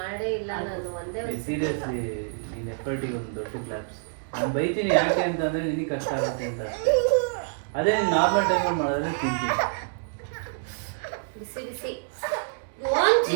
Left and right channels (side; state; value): left; silent; digital silence